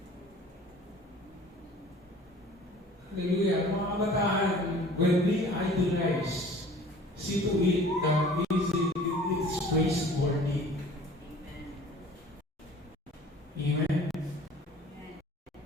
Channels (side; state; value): both; normal; correlation 0.48